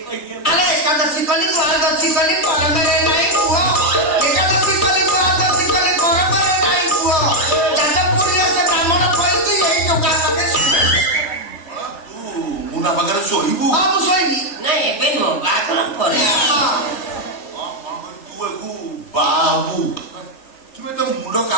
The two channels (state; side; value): late; right; 3.4 ms